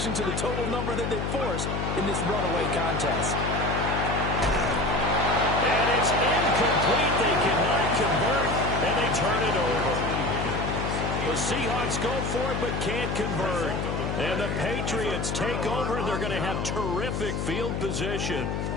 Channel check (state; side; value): noise; left; hum, 2 dB below the sound